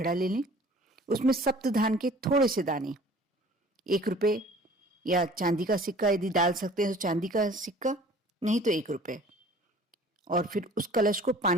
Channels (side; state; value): both; normal; correlation 0.49